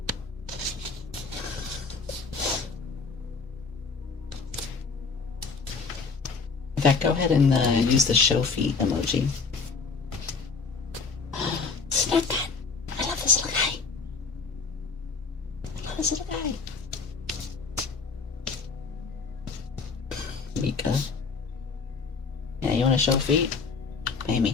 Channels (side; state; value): right; quieter; 4.8 dB